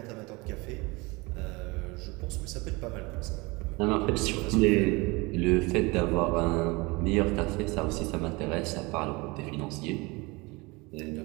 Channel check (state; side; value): quieter; left; 25.1 dB